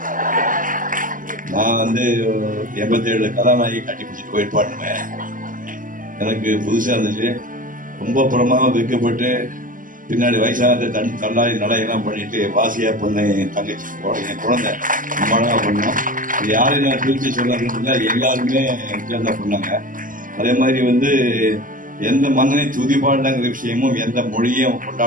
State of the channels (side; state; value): left; late; 0.39 ms